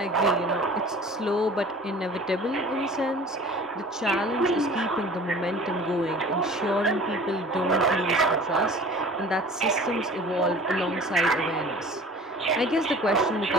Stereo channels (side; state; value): both; normal; correlation 0.44